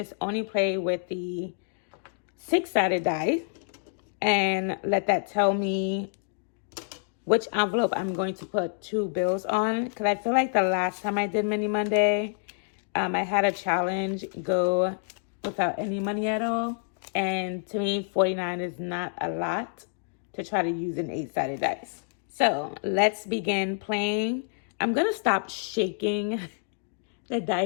only play with the 6-sided die and let that tell me which envelope I'm going to put 2 bills on. Because I feel like the last time I did Mini Monday, I had a challenge go without any money at all. And to me, 49 is not a lot to try to use an 8-sided dice. So let's begin playing. I'm going to stop shaking the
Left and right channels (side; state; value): right; silent; digital silence